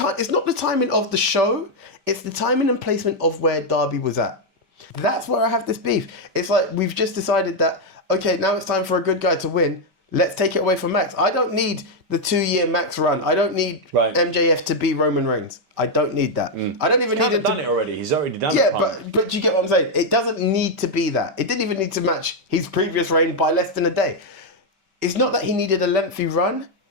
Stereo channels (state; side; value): late; left; 5.2 ms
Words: it's not the timing of the show, it's the timing and placement of where Darby was at. That's where I have this beef. It's like, we've just decided that, okay, now it's time for a good guy to win. Let's take it away from Max. I don't need the 2-year Max run. I don't need MJF to be Roman Reigns. I don't need that. I don't even need him to... He's done it already. He's already done it. Yeah, but you get what I'm saying? It doesn't need to be that. It didn't even need to match his previous reign by less than a day. It's not that he needed a lengthy run.